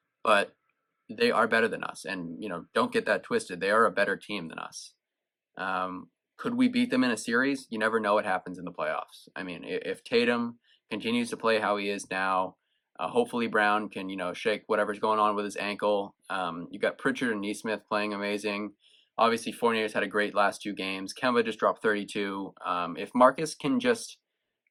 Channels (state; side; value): identical; both; correlation 1.00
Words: but they are better than us. And don't get that twisted. They are a better team than us. Could we beat them in a series? You never know what happens in the playoffs. I mean, if Tatum continues to play how he is now, hopefully Brown can, shake whatever's going on with his ankle. You got Pritchard and Nesmith playing amazing. Obviously, Fournier's had a great last 2 games. Kemba just dropped 32. If Marcus can just